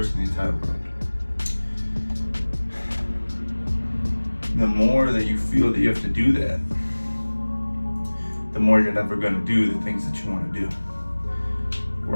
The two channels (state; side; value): inverted; both; correlation -1.00